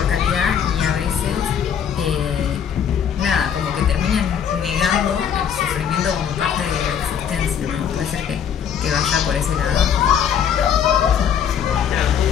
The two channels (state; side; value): quieter; right; 8.2 dB